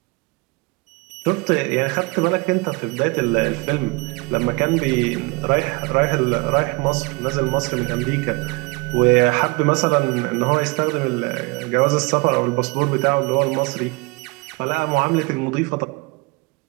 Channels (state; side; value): quieter; left; 27.3 dB